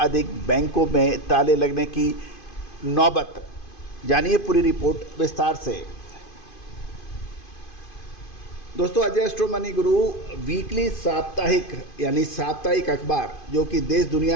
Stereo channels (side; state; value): right; late; 2.5 ms